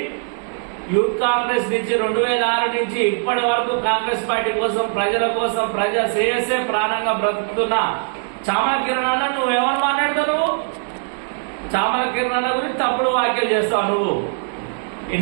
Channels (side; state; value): left; silent; 60 dB below the other